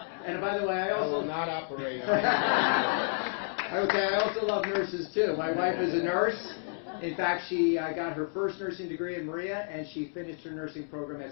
and by the way, I also... I will not operate on it. Okay, I also love nurses, too. My wife is a nurse. In fact, she got her first nursing degree in Maria, and she finished her nursing program at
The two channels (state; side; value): silent; right; digital silence